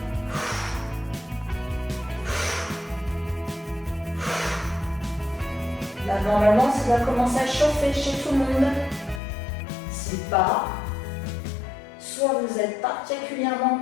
Là, normalement, ça va commencer à chauffer chez tout le monde. Si pas, soit vous êtes particulièrement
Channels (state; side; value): drops out; right; at 9.2 s